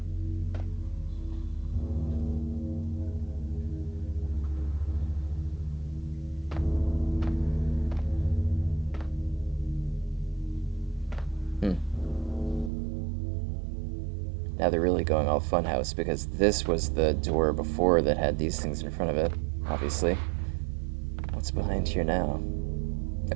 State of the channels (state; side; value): drops out; left; at 12.7 s